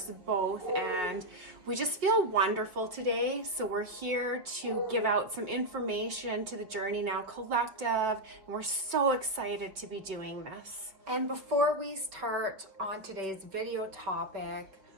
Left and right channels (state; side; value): late; left; 5.1 ms